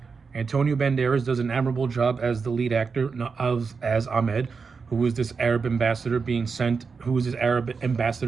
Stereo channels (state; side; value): quieter; left; 5.1 dB